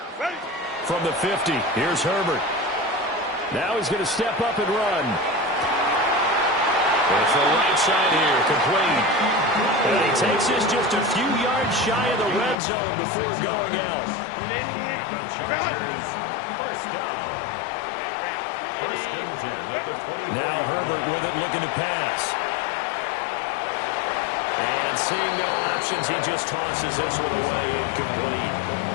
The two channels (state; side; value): drops out; right; at 12.6 s